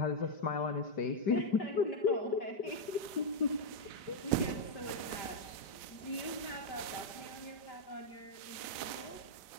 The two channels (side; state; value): right; late; 5.1 ms